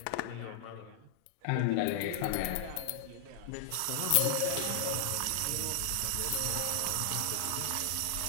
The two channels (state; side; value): different; both; correlation -0.01